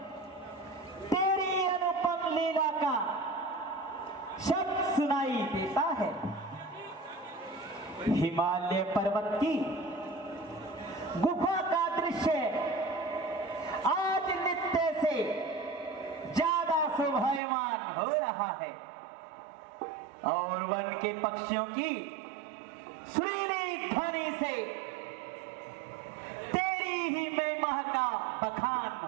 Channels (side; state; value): left; drops out; at 17.4 s